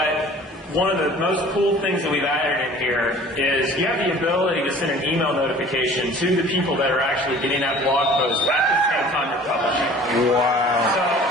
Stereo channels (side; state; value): both; normal; correlation 0.47